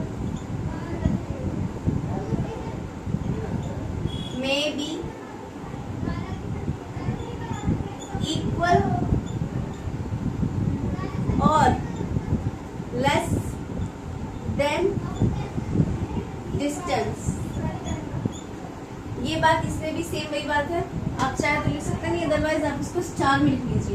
में बी इक्वल और लेस देन डिस्टेंस। ये बात इसमें भी सेम वही बात है, आप चाहे तो लिख सकते हैं, अदरवाइज आप इसको स्टार में लिख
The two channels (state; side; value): identical; both; correlation 1.00